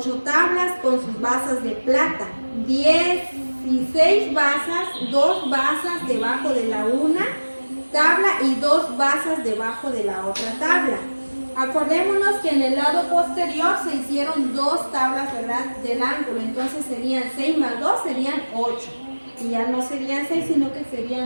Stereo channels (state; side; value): inverted; both; correlation -1.00